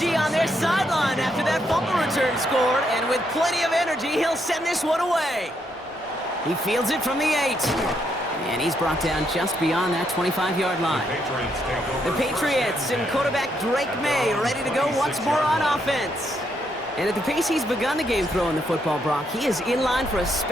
on their sideline after that fumble return scored, and with plenty of energy, he'll send this one away. He fields it from the 8, and he's brought down just beyond that 25-yard line. The Patriots and quarterback Drake May ready to go once more on offense. And at the pace he's begun the game throwing the football, Brock, he is in line for a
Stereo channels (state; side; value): normal; both; correlation 0.76